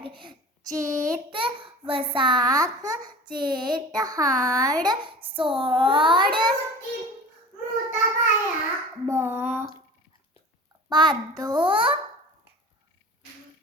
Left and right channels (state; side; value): normal; both; correlation 0.38